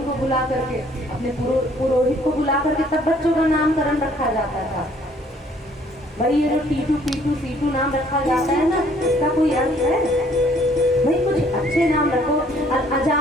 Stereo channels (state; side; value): normal; both; correlation 0.61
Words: को बुला करके, अपने पुरोहित को बुला करके तब बच्चों का नामकरण रखा जाता था। भाई ये जो टीटू पीटू सीटू नाम रखा जाता है ना, इसका कोई अर्थ है? भाई कुछ अच्छे नाम रखो।